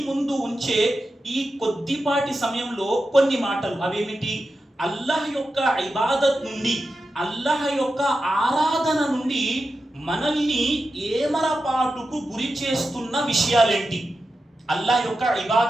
ముందు ఉంచే ఈ కొద్దిపాటి సమయంలో కొన్ని మాటలు, అవేమిటి? అల్లాహ్ యొక్క ఇబాదత్ నుండి, అల్లాహ్ యొక్క ఆరాధన నుండి మనల్ని ఏమరపాటుకు గురి చేస్తున్న విషయాలేంటి? అల్లాహ్ యొక్క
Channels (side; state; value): both; normal; correlation 0.90